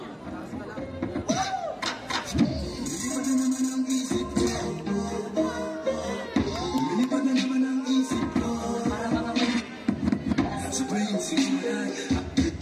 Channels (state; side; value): identical; both; correlation 1.00